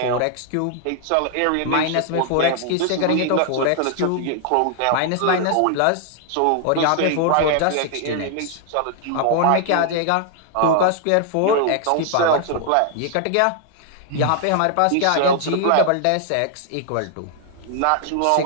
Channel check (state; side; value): different; both; correlation 0.00